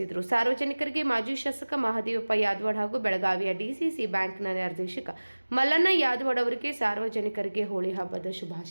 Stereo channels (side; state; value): both; inverted; correlation -1.00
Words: ಸಾರ್ವಜನಿಕರಿಗೆ ಮಾಜಿ ಶಾಸಕ ಮಹದೇವಪ್ಪ ಯಾದವಾಡ್ ಹಾಗೂ ಬೆಳಗಾವಿಯ ಡಿಸಿಸಿ ಬ್ಯಾಂಕ್ನ ನಿರ್ದೇಶಕ ಮಲ್ಲಣ್ಣ ಯಾದವಾಡ್ ಅವರಿಗೆ ಸಾರ್ವಜನಿಕರಿಗೆ ಹೋಳಿ ಹಬ್ಬದ